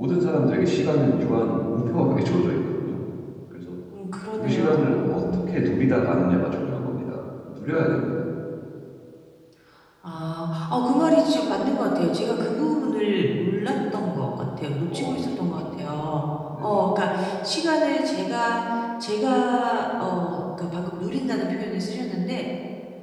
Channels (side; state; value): both; identical; correlation 1.00